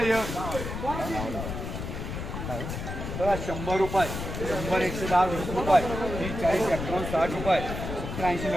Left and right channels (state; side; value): noise; left; rumble, 6 dB below the sound